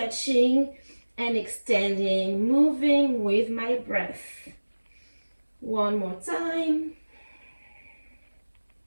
and extending, moving with my breath. One more time.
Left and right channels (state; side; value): inverted; both; correlation -1.00